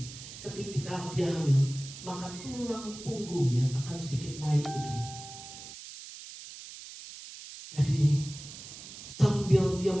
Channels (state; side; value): noise; right; hiss, 13 dB below the sound